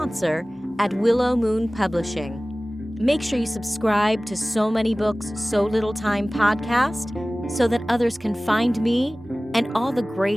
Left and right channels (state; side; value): normal; both; correlation 0.98